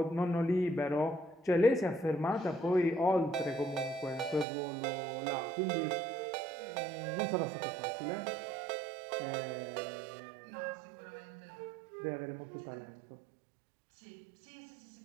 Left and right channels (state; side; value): drops out; left; at 4.5 s